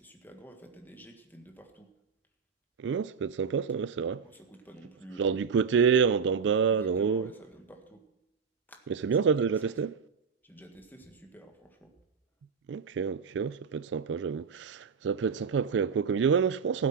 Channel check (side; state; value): left; quieter; 6.0 dB